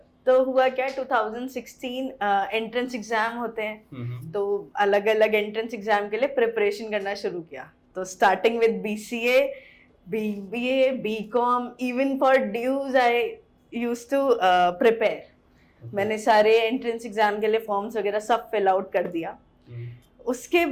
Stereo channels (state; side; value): identical; both; correlation 1.00